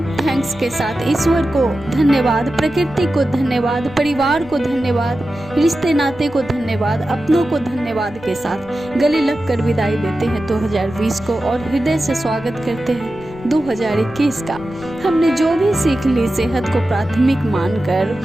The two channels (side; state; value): left; noise; rumble, 20 dB below the sound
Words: थैंक्स के साथ, ईश्वर को धन्यवाद, प्रकृति को धन्यवाद, परिवार को धन्यवाद, रिश्ते नाते को धन्यवाद, अपनों को धन्यवाद के साथ गले लग कर विदाई देते हैं 2020 को, और हृदय से स्वागत करते हैं 2021 का। हमने जो भी सीख ली, सेहत को प्राथमिक मानकर